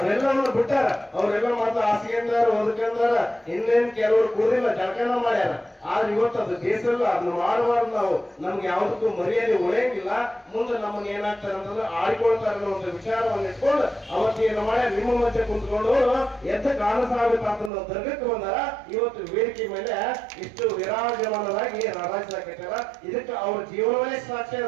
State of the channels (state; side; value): drops out; left; at 17.7 s